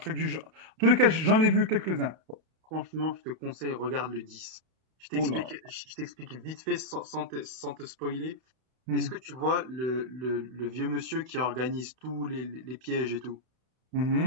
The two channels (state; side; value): late; left; 31 ms